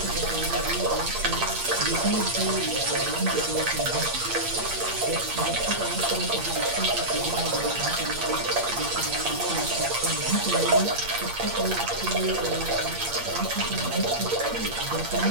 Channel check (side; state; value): left; late; 8.6 ms